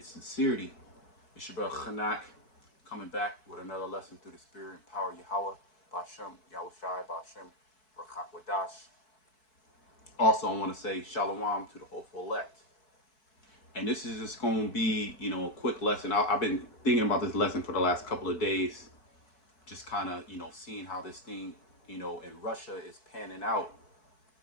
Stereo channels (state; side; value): late; right; 4.6 ms